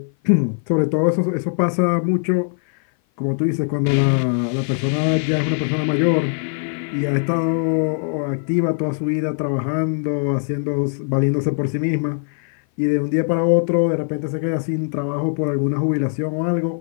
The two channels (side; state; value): right; silent; 56 dB below the other